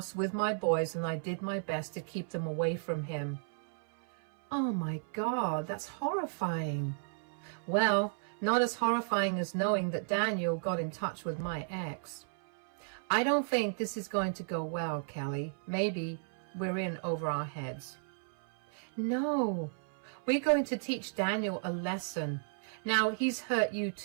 with my boys, and I did my best to keep them away from him. Oh my God, that's horrifying. Well, not as horrifying as knowing that Daniel got in touch with my ex. I don't think this is going to go well, Kelly. Maybe we're in over our heads. No, we're going to teach Daniel a lesson. Now, he's hurt you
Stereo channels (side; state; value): left; silent; 55 dB below the other